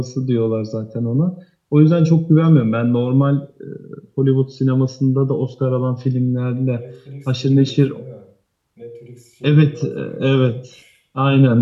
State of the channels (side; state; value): both; identical; correlation 1.00